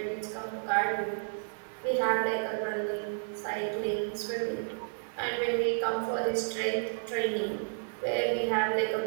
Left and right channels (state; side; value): silent; left; 57 dB below the other